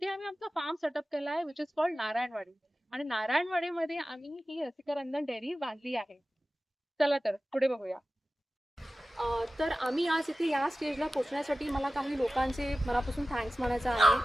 आम्ही आमचा फार्म सेटअप केला आहे, विच इज कॉल्ड नारायणवाडी. आणि नारायणवाडीमध्ये आम्ही ही रसिका रंजन डेअरी बांधली आहे. चला तर पुढे बघूया. तर आम्ही आज इथे या स्टेजला पोहोचण्यासाठी मला काही लोकांचे मनापासून थँक्स म्हणायचं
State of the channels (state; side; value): normal; both; correlation 0.95